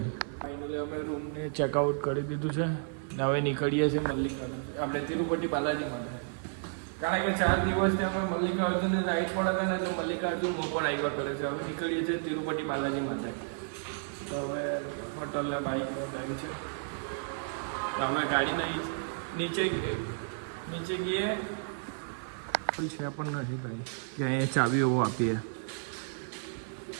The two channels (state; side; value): silent; left; 56 dB below the other